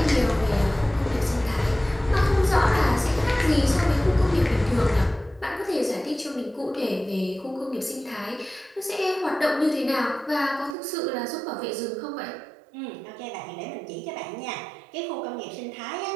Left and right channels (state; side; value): drops out; left; at 10.8 s